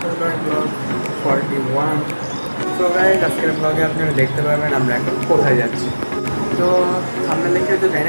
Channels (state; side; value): inverted; both; correlation -1.00